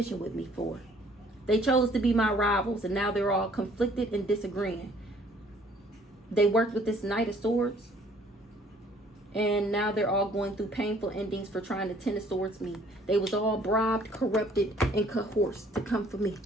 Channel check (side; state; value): both; normal; correlation 0.59